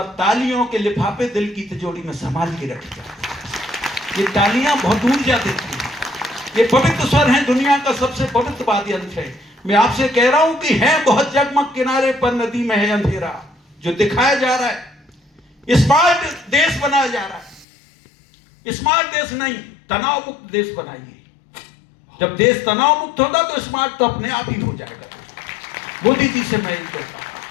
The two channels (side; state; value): right; drops out; at 17.7 s